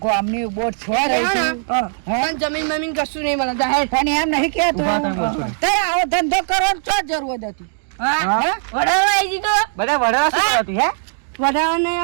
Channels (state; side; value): silent; left; digital silence